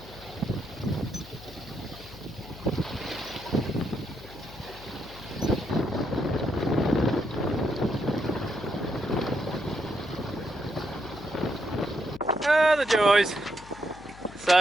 Ah, the joys.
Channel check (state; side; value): noise; left; hum, 18 dB below the sound